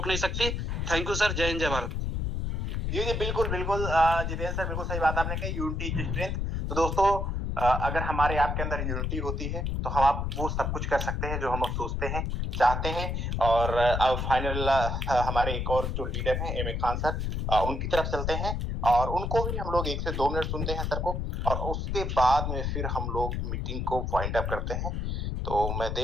नहीं सकती। थैंक यू सर, जय हिंद, जय भारत। जी बिल्कुल बिल्कुल जितेंद्र सर, बिल्कुल सही बात आपने कही, यूनिटी इज स्ट्रेंथ। तो दोस्तों अगर हमारे आपके अंदर यूनिटी होती है तो हम आप वो सब कुछ कर सकते हैं जो हम सोचते हैं, चाहते हैं। और अब फाइनल हमारे एक और जो लीडर हैं एम ए खान सर, उनकी तरफ चलते हैं और उनको भी हम लोग 1 से 2 मिनट सुनते हैं सर को, और उसके बाद में फिर हम लोग मीटिंग को वाइंड अप करते हैं। तो मैं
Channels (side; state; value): left; noise; rumble, 1 dB below the sound